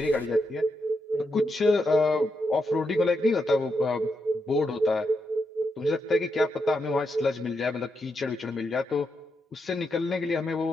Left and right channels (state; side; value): normal; both; correlation 0.83